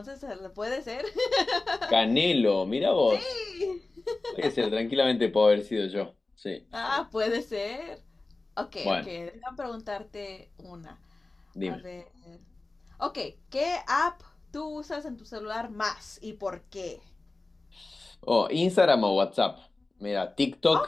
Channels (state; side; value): quieter; right; 3.2 dB